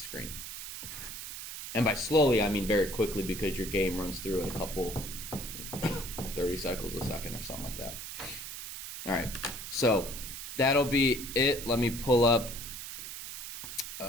screen. And by slowly, I mean very quickly, because your game runs through it a couple 30 cycles a second or something like that. All right, so that'll be it. Let me pull up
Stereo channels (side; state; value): right; noise; hiss, 9 dB below the sound